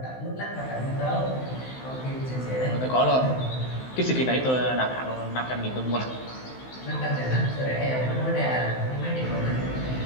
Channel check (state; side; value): late; right; 16 ms